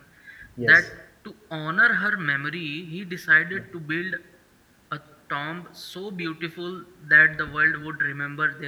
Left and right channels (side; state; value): both; identical; correlation 1.00